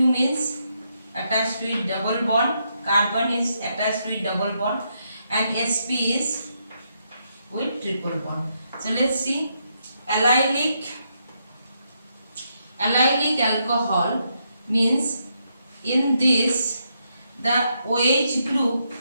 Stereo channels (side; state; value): both; inverted; correlation -0.79